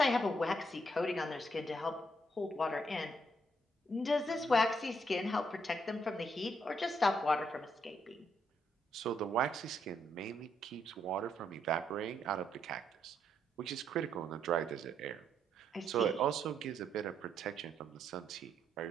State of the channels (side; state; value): both; normal; correlation 0.75